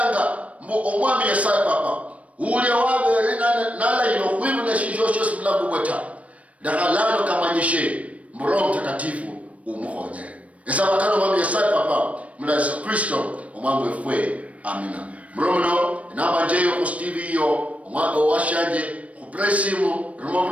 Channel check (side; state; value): left; late; 0.066 ms